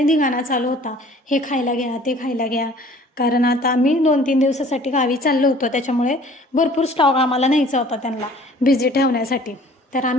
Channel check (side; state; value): both; normal; correlation 0.51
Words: धिंगाणा चालू होता. हे खायला घ्या, ते खायला घ्या. कारण आता आम्ही 2-3 दिवसासाठी गावी चाललो होतो. त्याच्यामुळे भरपूर स्टॉक आम्हाला न्यायचा होता त्यांना बिझी ठेवण्यासाठी. तर